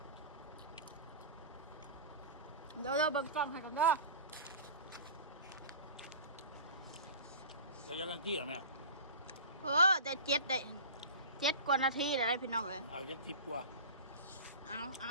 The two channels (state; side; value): inverted; both; correlation -0.34